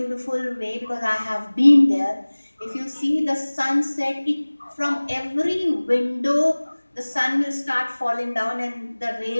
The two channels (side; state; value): both; inverted; correlation -1.00